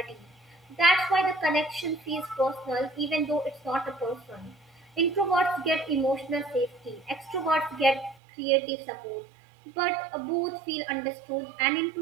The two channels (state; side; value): drops out; left; at 8.2 s